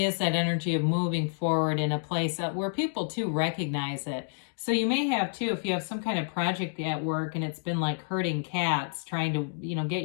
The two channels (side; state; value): right; silent; digital silence